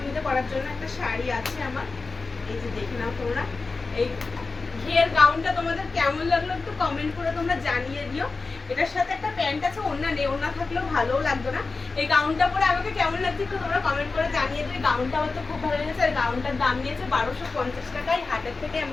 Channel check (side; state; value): right; quieter; 4.0 dB